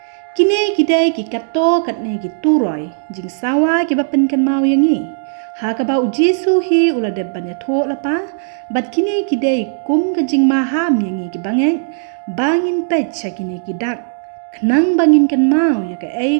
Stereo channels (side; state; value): left; silent; digital silence